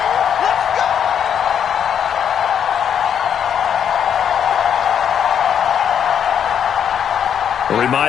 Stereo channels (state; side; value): quieter; right; 8.4 dB